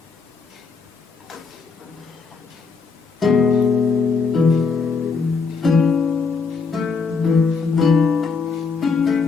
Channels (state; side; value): quieter; right; 4.9 dB